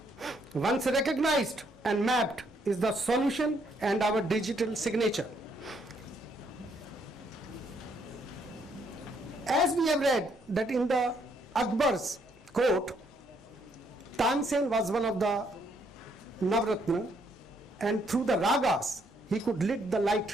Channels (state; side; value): normal; both; correlation 0.71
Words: Once recognized and mapped is the solution and our digital signature. As we have read that in the Akbar's court, Tansen was one of the Navratna, and through the ragas he could lit the